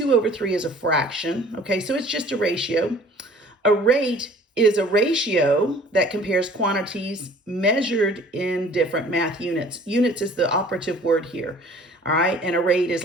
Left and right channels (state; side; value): normal; both; correlation 0.51